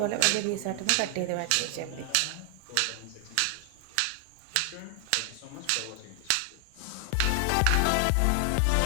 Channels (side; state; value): both; different; correlation 0.00